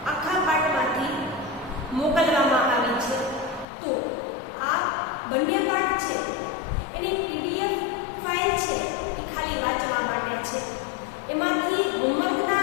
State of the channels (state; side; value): drops out; right; at 3.7 s